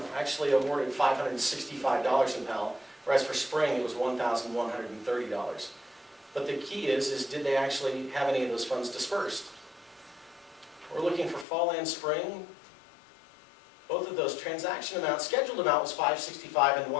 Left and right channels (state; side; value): drops out; right; at 11.5 s